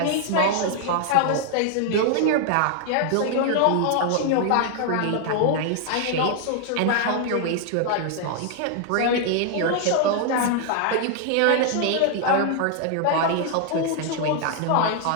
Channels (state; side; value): different; both; correlation 0.00